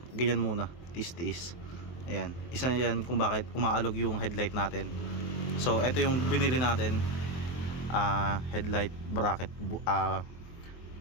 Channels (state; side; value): late; right; 23 ms